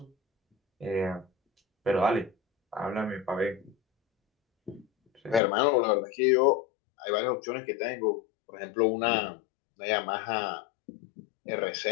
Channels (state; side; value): drops out; right; at 5.4 s